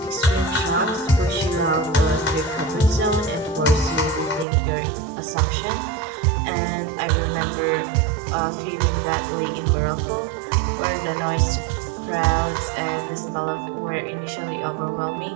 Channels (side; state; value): left; drops out; at 4.5 s